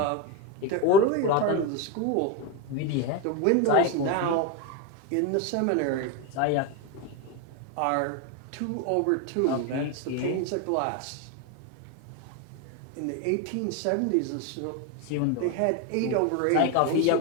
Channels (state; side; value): different; both; correlation 0.03